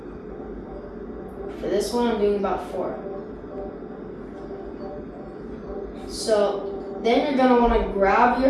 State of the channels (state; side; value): identical; both; correlation 1.00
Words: For this one, I'm doing about 4. So then you're gonna want to grab your